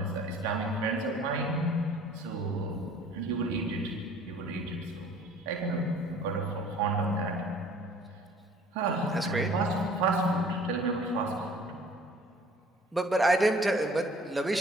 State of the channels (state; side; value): normal; both; correlation 0.52